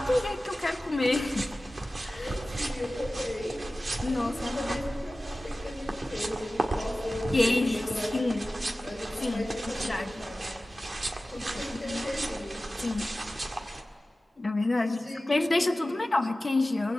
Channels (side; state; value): both; normal; correlation 0.96